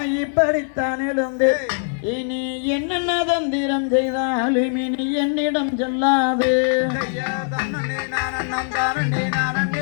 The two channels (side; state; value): right; silent; digital silence